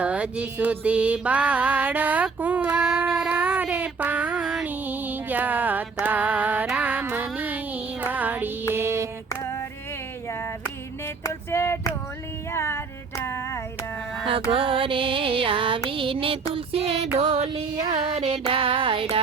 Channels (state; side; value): quieter; left; 4.8 dB